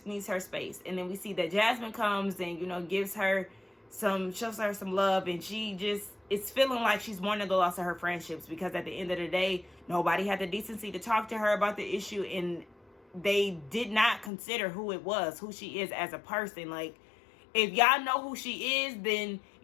needs her space. And then we see that Jasmine comes and, you know, shows her some love, and she just is feeling like she's mourning the loss of her friendships, because at the end of the day, nobody had the decency to talk to her about the issue, and they did not consider who she is as a person. Like, if y'all know who she is, then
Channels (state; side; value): drops out; right; at 14.3 s